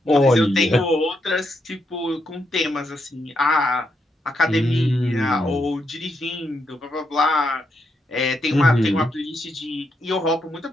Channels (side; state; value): both; normal; correlation 0.80